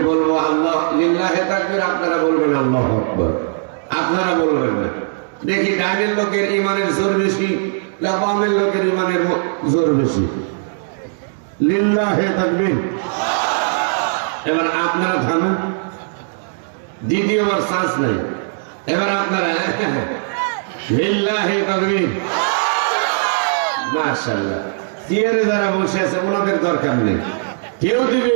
বলবো আল্লাহ লিল্লাহে তাকবীর, আপনারা বলবেন আল্লাহু আকবার। আপনারা বলবেন না। দেখি ডাইনের লোকের ইমানের জোর বেশি না বামের লোকের ইমানের জোর বেশি? লিল্লাহে তাকবীর। এবার আপনারা থামেন, দ্বিতীয়বার শ্বাস নাই। এবার আপনারা লিল্লাহে তাকবীর। মাশাআল্লাহ। চেয়ারে যারা বসে আছে ওনাদের দরকার নেই। কেউ দিবে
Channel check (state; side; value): silent; left; digital silence